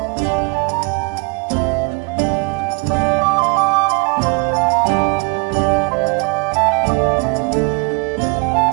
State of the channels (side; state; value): left; quieter; 31.6 dB